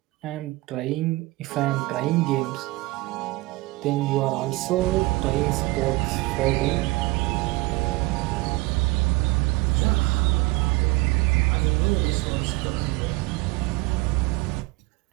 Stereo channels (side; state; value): left; quieter; 21.9 dB